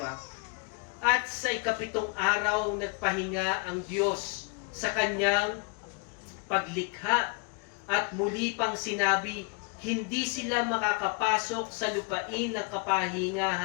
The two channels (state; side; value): quieter; right; 33.4 dB